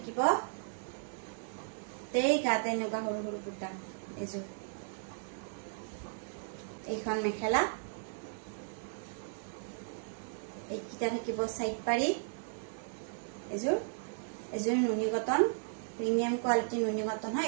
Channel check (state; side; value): silent; left; digital silence